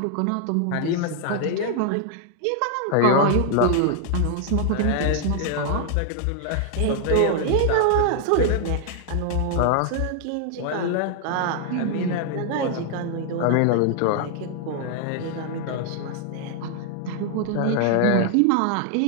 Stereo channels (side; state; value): both; different; correlation 0.00